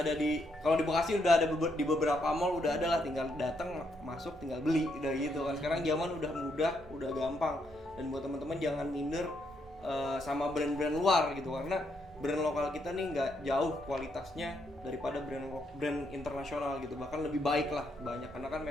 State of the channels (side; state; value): both; normal; correlation 0.76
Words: kalau di Bekasi udah ada di beberapa mall udah ada lah, tinggal datang masuk tinggal beli udah gitu kan. Sekarang zaman udah mudah, udah gampang. Dan buat teman-teman jangan minder sama brand-brand luar gitu, karena brand lokal kita nih nggak jauh kualitasnya daripada brand internasional gitu, bahkan lebih baik lah banyak, karena kan